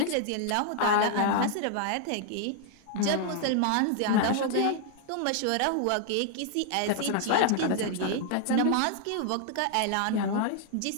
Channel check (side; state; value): both; different; correlation 0.00